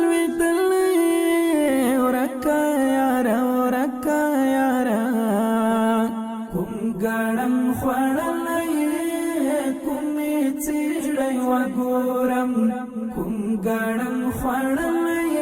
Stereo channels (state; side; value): identical; both; correlation 1.00